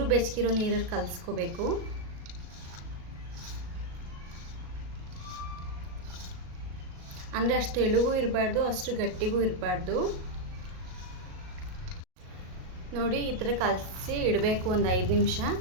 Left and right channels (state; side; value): late; left; 37 ms